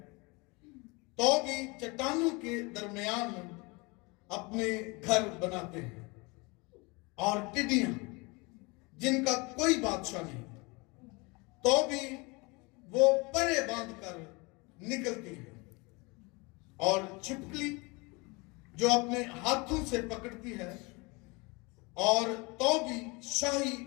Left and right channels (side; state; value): right; quieter; 27.3 dB